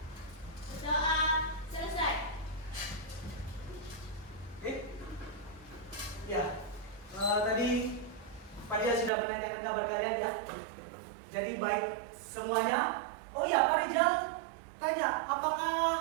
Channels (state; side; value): drops out; left; at 9.1 s